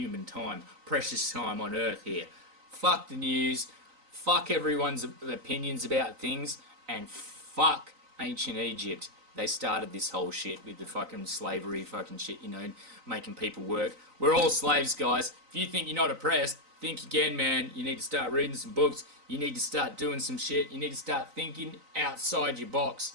time. Precious time on Earth here. Fuck the news. Fuck everyone's opinions about things. And fuck ancient Egypt. They started this whole shit with the fucking slavery fucking shit, you know, making people work. We're all slaves, guys. If you think you're not oppressed, think again, man. You need to start reading some books. You need to start doing some shit. You need to start thinking outside your box.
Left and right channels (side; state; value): left; late; 3.9 ms